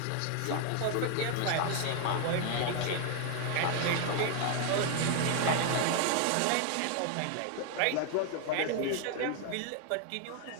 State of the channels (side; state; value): both; different; correlation 0.00